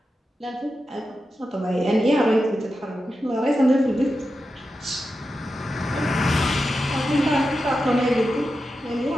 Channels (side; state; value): both; normal; correlation 0.90